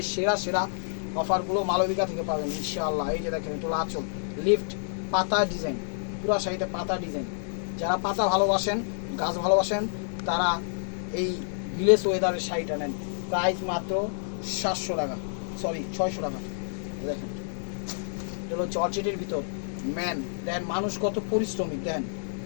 সেরা সেরা অফারগুলো মালবিকা থেকে পাবেন ইনশাআল্লাহ। এই যে দেখেন এটা হলো আঁচল, লিফট পাতা ডিজাইন, পুরা শাড়িতে পাতা ডিজাইন। যারা পাতা ভালোবাসেন, গাছ ভালোবাসেন, তারা এই ভিলেজ ওয়েদারের শাড়িটা নেন। প্রাইস মাত্র 700 টাকা, সরি 600 টাকা। দেখেন এটা হলো জর্জেটের ভিতর ম্যান, দেন মানুষ কত পরিশ্রমিক, দেন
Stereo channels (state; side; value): silent; right; digital silence